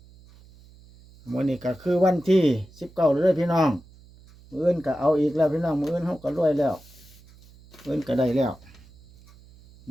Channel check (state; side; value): noise; right; hum, 24 dB below the sound